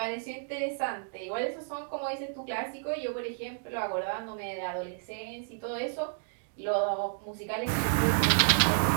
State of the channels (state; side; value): silent; left; digital silence